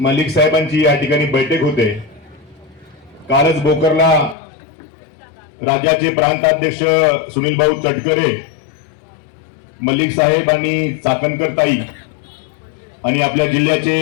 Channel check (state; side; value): drops out; right; at 4.4 s